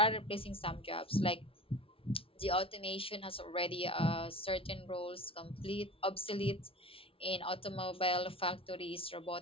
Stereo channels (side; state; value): right; late; 0.26 ms